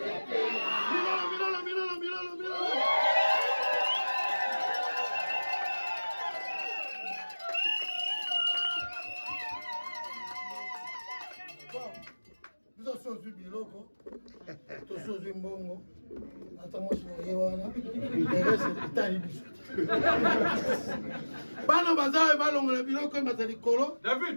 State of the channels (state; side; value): inverted; both; correlation -1.00